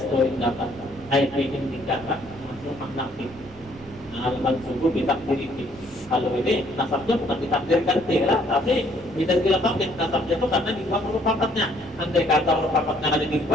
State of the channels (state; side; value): normal; both; correlation 0.64